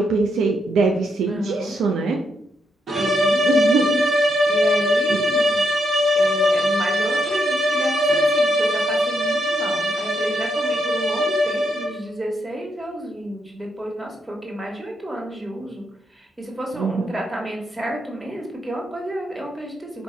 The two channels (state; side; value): normal; both; correlation 0.79